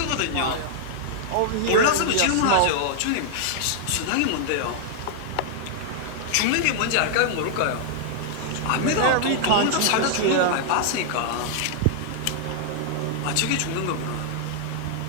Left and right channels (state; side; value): different; both; correlation -0.01